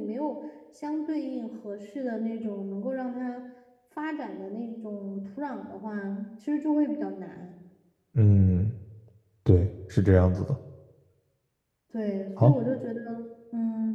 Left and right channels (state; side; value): identical; both; correlation 1.00